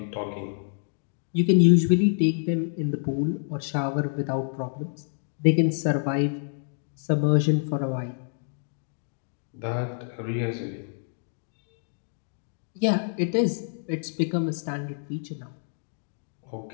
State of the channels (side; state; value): right; silent; digital silence